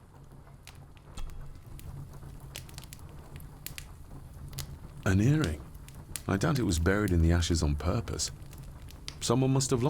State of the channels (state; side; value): identical; both; correlation 1.00